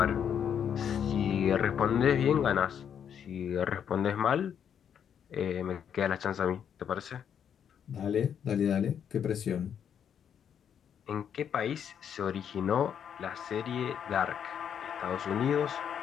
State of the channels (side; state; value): right; quieter; 8.4 dB